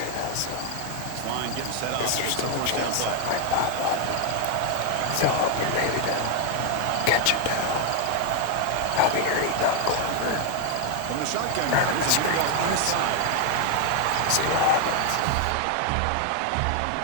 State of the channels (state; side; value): different; both; correlation 0.01